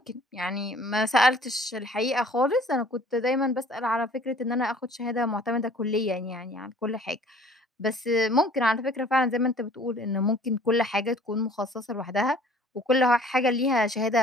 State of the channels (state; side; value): normal; both; correlation 0.52